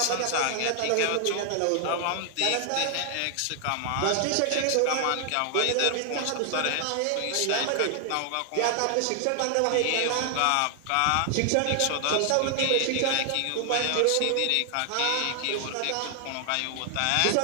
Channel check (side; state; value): both; different; correlation 0.00